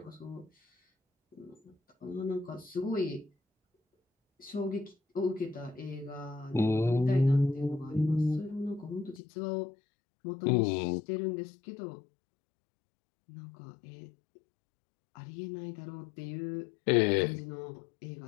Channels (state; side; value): drops out; right; at 9.2 s